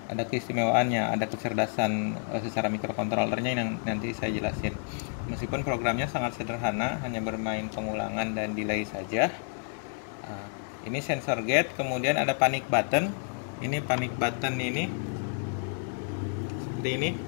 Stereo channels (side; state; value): right; silent; digital silence